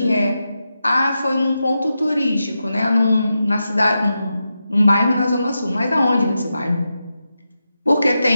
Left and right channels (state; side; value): inverted; both; correlation -0.89